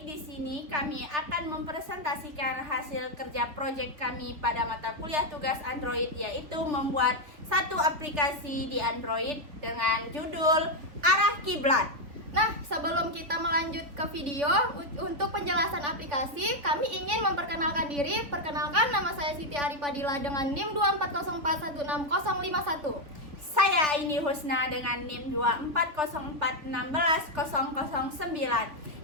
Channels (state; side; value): late; left; 3.7 ms